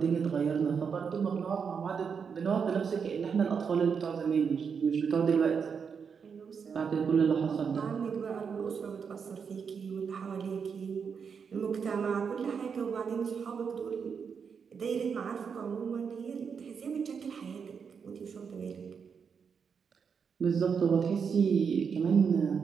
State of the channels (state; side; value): quieter; left; 6.3 dB